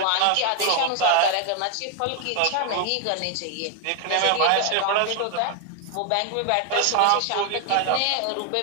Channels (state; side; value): different; both; correlation 0.00